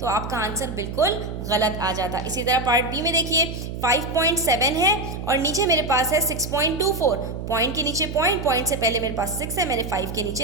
आपका आंसर बिल्कुल गलत आ जाता। इसी तरह पार्ट बी में देखिए, 5.7 है और नीचे मेरे पास है 6.24। पॉइंट के नीचे पॉइंट, पॉइंट से पहले मेरे पास 6 है, मैंने 5 के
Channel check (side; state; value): right; noise; hum, 7 dB below the sound